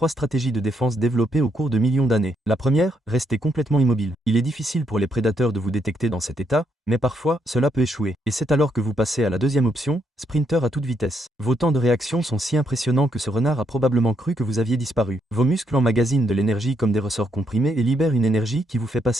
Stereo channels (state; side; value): normal; both; correlation 0.76